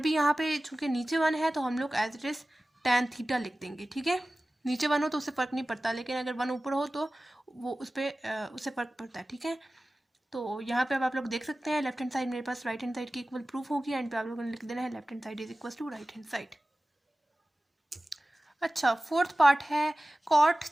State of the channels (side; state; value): both; normal; correlation 0.96